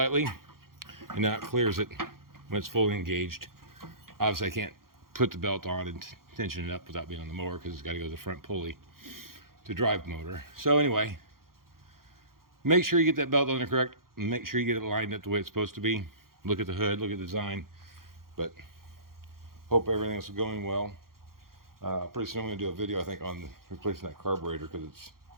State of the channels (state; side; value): late; left; 0.92 ms